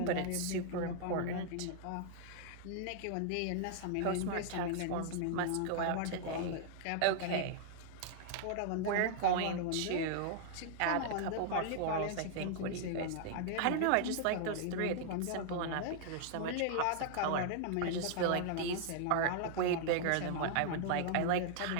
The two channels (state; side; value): different; both; correlation 0.00